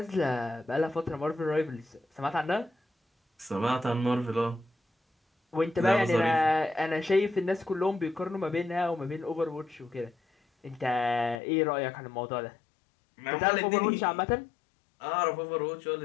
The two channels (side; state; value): right; drops out; at 11.4 s